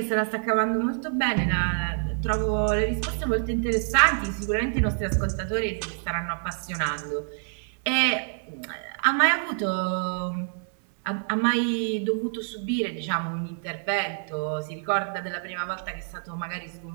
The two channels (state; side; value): silent; left; 57 dB below the other